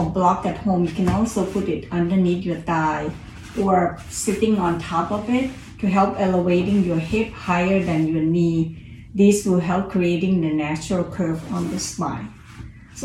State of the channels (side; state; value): both; identical; correlation 1.00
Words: block at home, you can also put it underneath your thigh or sitting on top of it to help elevating your hip higher than your knee. This will help creating the natural curve on the spine.